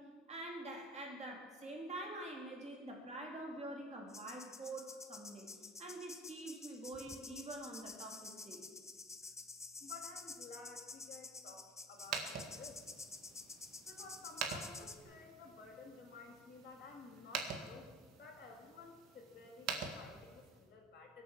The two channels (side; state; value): both; normal; correlation 0.40